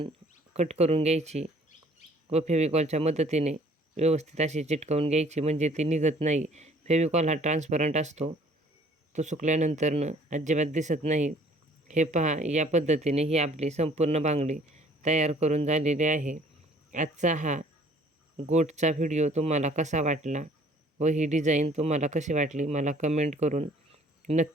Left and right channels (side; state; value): both; normal; correlation 0.56